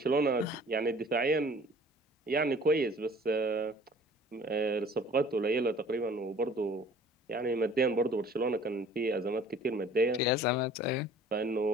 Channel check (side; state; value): both; normal; correlation 0.51